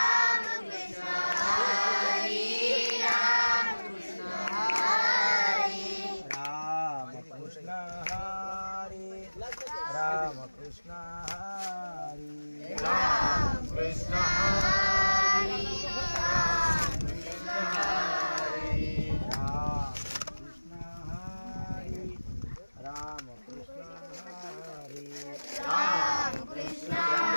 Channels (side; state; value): both; inverted; correlation -1.00